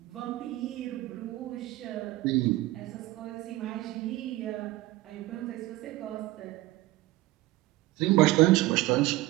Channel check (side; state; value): left; quieter; 18.0 dB